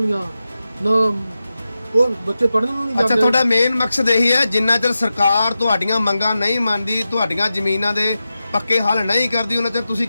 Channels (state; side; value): inverted; both; correlation -0.92